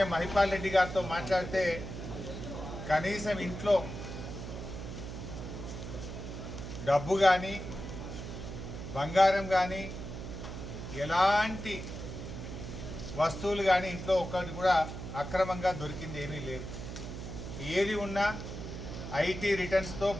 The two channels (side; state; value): right; noise; hum, 8 dB below the sound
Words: మహిపాల్ రెడ్డి గారితో మాట్లాడితే కనీసం ఇంట్లో డబ్బు కానీ బంగారం కానీ ఎలాంటి వస్తువులు కానీ ఇంట్లో ఒక్కటి కూడా అక్రమంగా దొరికింది ఏమీ లేదు. ఏది ఉన్నా ఐటీ రిటర్న్స్తో